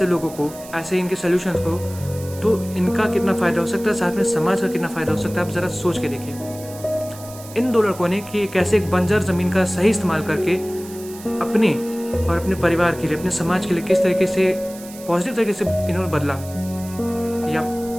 लोगों को, ऐसे इनके सल्यूशंस को, तो इनका कितना फ़ायदा हो सकता है, साथ में समाज का कितना फ़ायदा हो सकता है, आप ज़रा सोच के देखिए। इन दो लड़कों ने कि कैसे एक बंजर ज़मीन का सही इस्तेमाल करके अपने और अपने परिवार के लिए, अपने समाज के लिए किस तरीके से पॉजिटिव तरीके से इन्होंने बदला, ये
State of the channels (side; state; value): right; noise; hiss, 17 dB below the sound